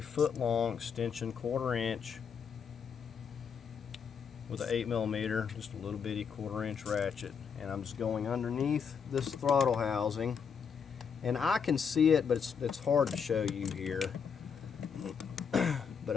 1-foot-long extension, 1/4 inch, with an 8mm, just a little bitty 1/4 inch ratchet, and I'm just going underneath this throttle housing, and I can see it, but it's hard to show you here,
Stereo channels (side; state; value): right; quieter; 6.7 dB